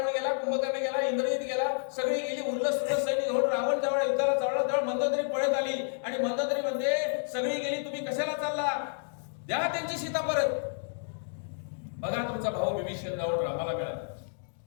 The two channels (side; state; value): right; silent; digital silence